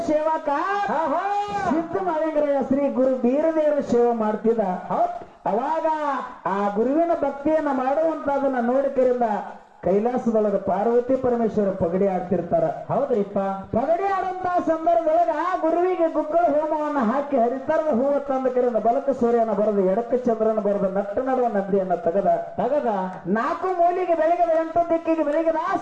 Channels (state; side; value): identical; both; correlation 1.00